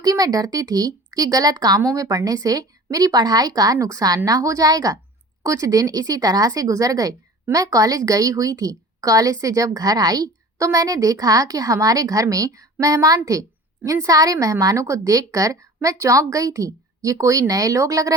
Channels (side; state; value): both; normal; correlation 0.41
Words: मैं डरती थी कि गलत कामों में पड़ने से मेरी पढ़ाई का नुकसान ना हो जाएगा। कुछ दिन इसी तरह से गुजर गए। मैं कॉलेज गई हुई थी। कॉलेज से जब घर आई तो मैंने देखा कि हमारे घर में मेहमान थे। इन सारे मेहमानों को देखकर मैं चौंक गई थी। ये कोई नए लोग लग